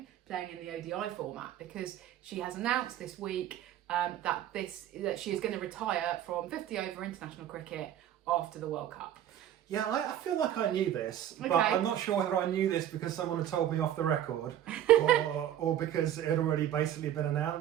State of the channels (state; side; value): quieter; left; 11.3 dB